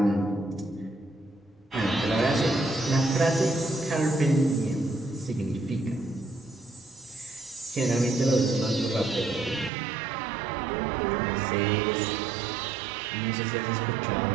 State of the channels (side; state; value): left; drops out; at 9.7 s